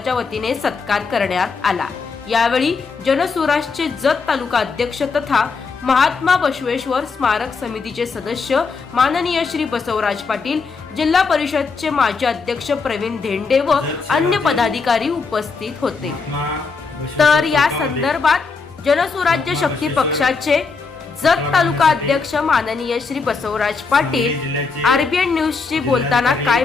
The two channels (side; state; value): right; quieter; 4.7 dB